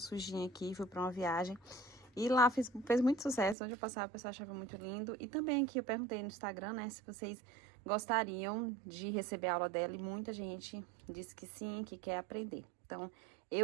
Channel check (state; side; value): drops out; left; at 3.6 s